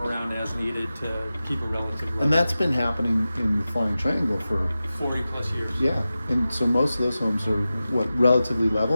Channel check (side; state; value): both; inverted; correlation -0.95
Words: around as needed to keep a relative level. And that's been happening in the Flying Triangle for 40 plus years. yeah. And so most of those homes are what, relatively